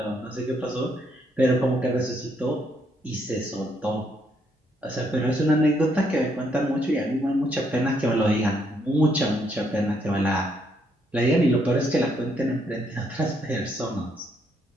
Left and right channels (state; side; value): normal; both; correlation 0.73